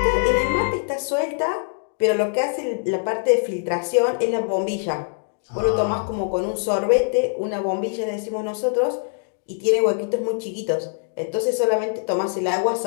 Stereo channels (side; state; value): right; silent; digital silence